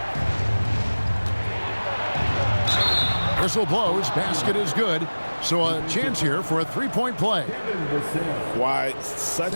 Whistle blows, basket is good. So a chance here for a 3-point play. Why,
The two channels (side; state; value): both; inverted; correlation -1.00